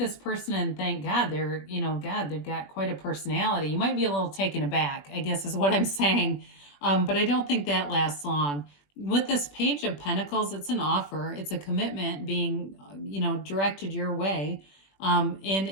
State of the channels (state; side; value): late; right; 21 ms